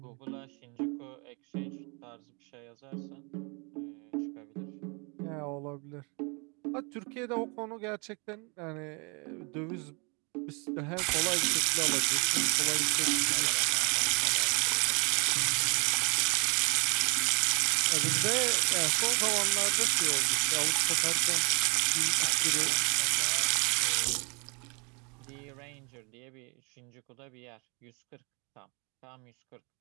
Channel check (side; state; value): left; quieter; 32.5 dB